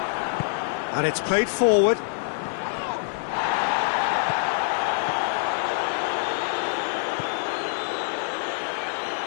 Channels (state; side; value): silent; right; 57 dB below the other